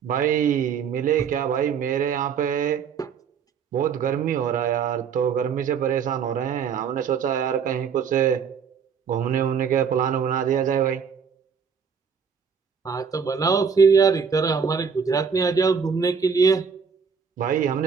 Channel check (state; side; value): quieter; left; 6.6 dB